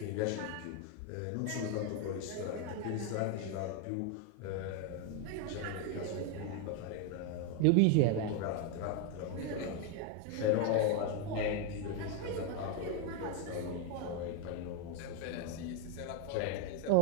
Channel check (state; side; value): different; both; correlation 0.01